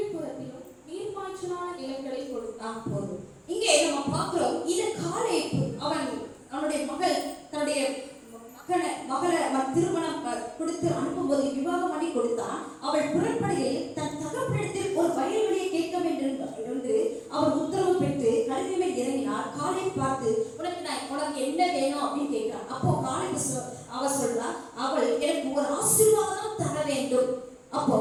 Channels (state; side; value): identical; both; correlation 1.00